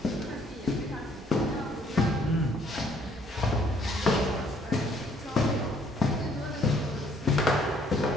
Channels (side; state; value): both; normal; correlation 0.63